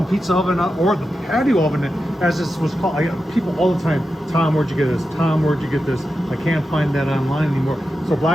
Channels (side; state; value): both; normal; correlation 0.90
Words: pizza oven, or the patio oven, as this was called. I get people all the time, Tom, where'd you get this? Tom, where'd you get this? I can't find that online anymore. So